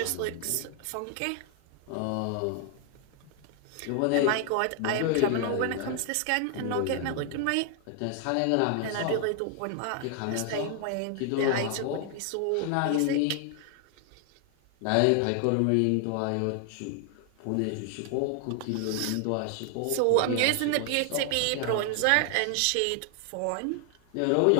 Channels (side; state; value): both; different; correlation 0.00